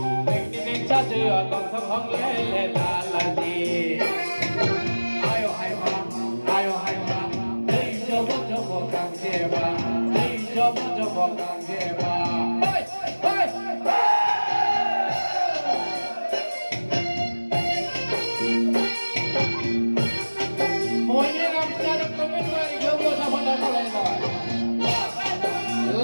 백리백 찾으어 공통홍례 달라지 아유 하이마 아유 하이마 에이 저거 강제봐 에이 저거 강제봐 mỗi năm ra được có biết người thiếu mua sao phân đấu lên rồi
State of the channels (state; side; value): inverted; both; correlation -1.00